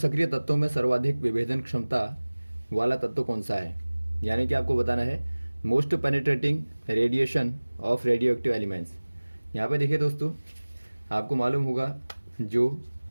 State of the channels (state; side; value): inverted; both; correlation -1.00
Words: तत्वों में सर्वाधिक विभेदन क्षमता वाला तत्व कौन सा है। यानी कि आपको बताना है most penetrating radiation of radio active elements. यहाँ पे देखिए दोस्तों, आपको मालूम होगा जो